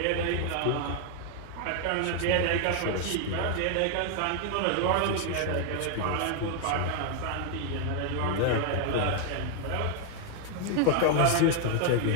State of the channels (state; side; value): different; both; correlation 0.00